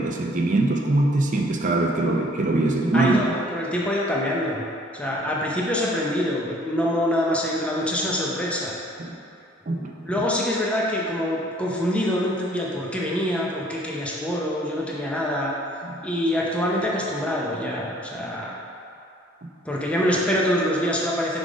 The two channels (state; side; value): normal; both; correlation 0.58